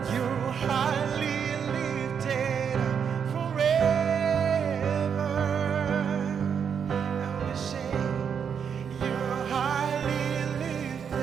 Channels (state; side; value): quieter; left; 7.3 dB